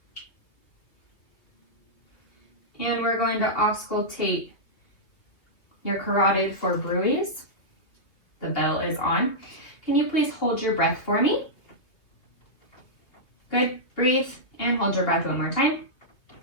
And we're going to auscultate your carotid for bruits. The bell is on. Can you please hold your breath for me? Good. Breathe and hold your breath one more time.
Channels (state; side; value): late; right; 2.7 ms